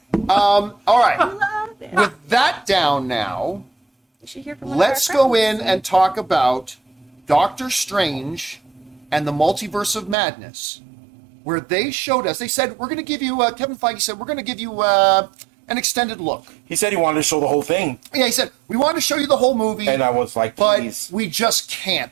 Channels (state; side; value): drops out; left; at 10.2 s